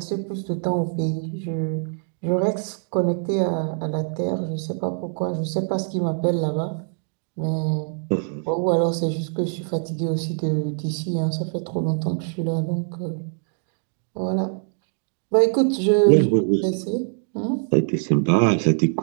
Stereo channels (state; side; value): silent; left; 57 dB below the other